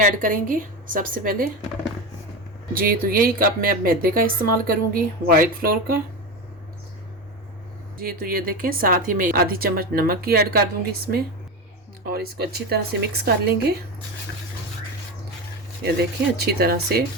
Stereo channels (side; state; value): both; normal; correlation 0.21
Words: ऐड करेंगे सबसे पहले। जी तो यही कप मैं अब मैदे का इस्तेमाल करूँगी, वाइट फ्लोर का। जी तो ये देखें, साथ ही मैं आधी चम्मच नमक की ऐड कर दूँगी इसमें और इसको अच्छी तरह से मिक्स कर लेंगे। ये देखें अच्छी तरह से